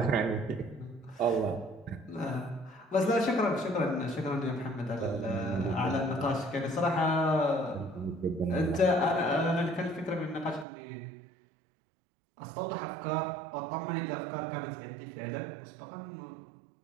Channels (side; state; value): left; drops out; at 10.7 s